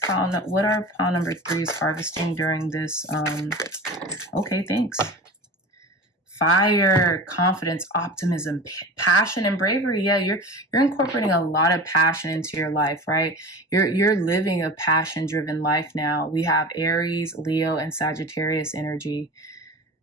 are pile number 3s harvesting during this? Okay, thanks. Fire, confidence, optimism, passion, and bravery. Yeah, you're incorporating a lot of passion into your life, right? You're living a passion-driven life now. We have Aries, Leo, and Sagittarius energy.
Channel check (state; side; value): normal; both; correlation 0.33